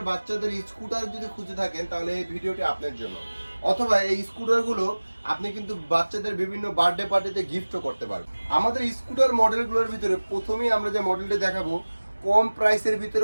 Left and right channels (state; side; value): inverted; both; correlation -1.00